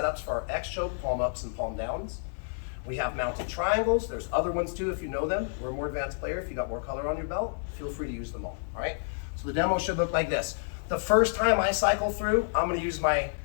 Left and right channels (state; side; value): silent; right; digital silence